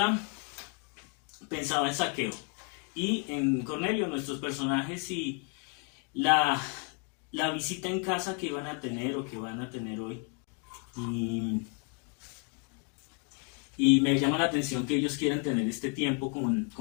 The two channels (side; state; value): right; quieter; 35.5 dB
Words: pensaba en Zaqueo y en Cornelio, nuestros personajes, y la visita en casa que iban a tener o que van a tener hoy. Y me llama la atención que ellos quieran tener este tiempo